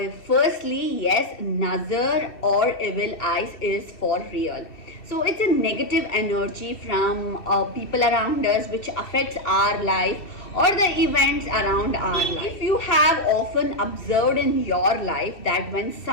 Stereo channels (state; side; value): late; right; 2.7 ms